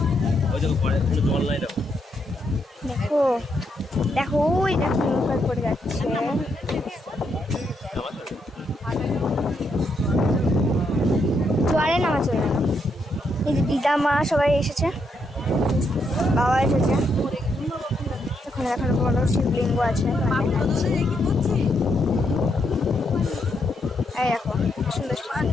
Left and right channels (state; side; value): normal; both; correlation 0.78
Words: দেখো দেখো ওই দেখো নৌকা করে যাচ্ছে। জোয়ারে নামা চলে না। এই যে দিদা মা সবাই এসেছে, বাবা এসেছে। ওখানে এখন বড় শিবলিঙ্গ আছে। এই দেখো সুন্দর